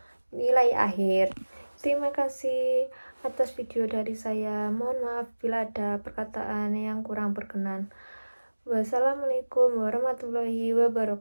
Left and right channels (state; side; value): inverted; both; correlation -1.00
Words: nilai akhir. Terima kasih atas video dari saya. Mohon maaf bila ada perkataan yang kurang berkenan. Wassalamualaikum warahmatullahi